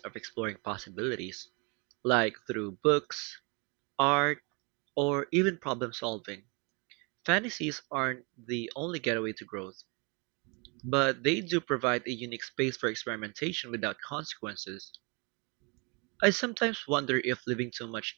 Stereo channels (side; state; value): left; quieter; 31.7 dB